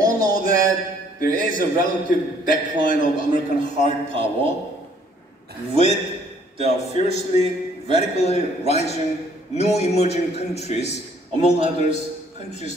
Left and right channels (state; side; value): normal; both; correlation 0.62